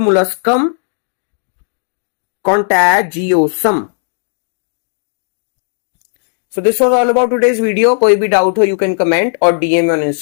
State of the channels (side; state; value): right; silent; digital silence